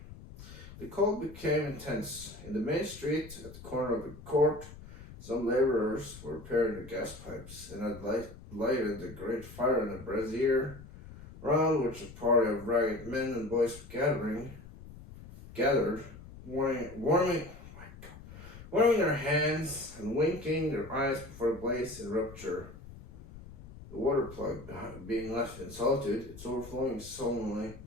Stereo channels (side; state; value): left; noise; rumble, 16 dB below the sound